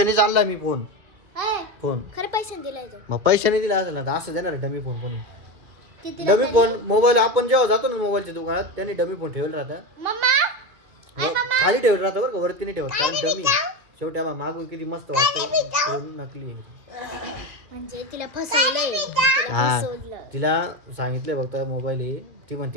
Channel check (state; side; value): late; left; 2.4 ms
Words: आणलाय मी फोन. खरं पैशाने दिलाय तो. मग पैशाने दिला असेल ना, असं देणार डमी फोन कोणी? डमी फोन मोबाईल आपण जेव्हा जातो ना मोबाईलच्या दुकानात, त्यांनी डमी फोन ठेवलं राहतं. खाली ठेवलं राहतं बरं का, वरती नाही ठेवत. कारण डमी शेवटी आम्हाला मागून किती मस्त वाटतं. नकली आहे म्हणजे तिला फसवलं. तिला सांगितलंय फक्त मोबाईल आहे. ती